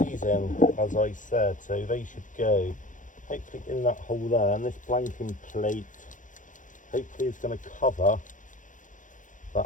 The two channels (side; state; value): right; late; 0.37 ms